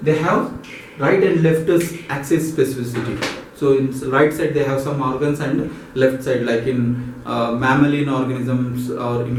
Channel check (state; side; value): identical; both; correlation 1.00